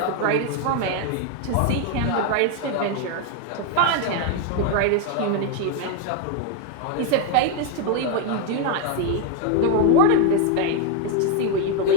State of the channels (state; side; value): different; both; correlation 0.01